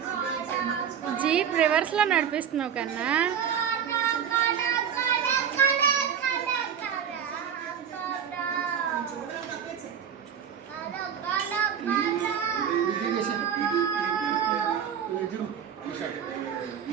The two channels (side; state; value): left; quieter; 8.3 dB